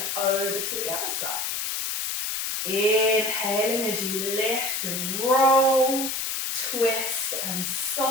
over to the other side. Inhaling as you lift and roll, twist and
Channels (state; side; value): noise; left; hiss, 2 dB below the sound